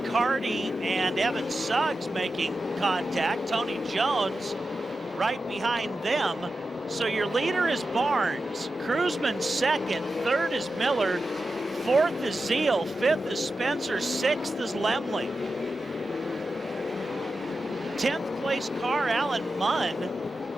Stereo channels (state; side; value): normal; both; correlation 0.91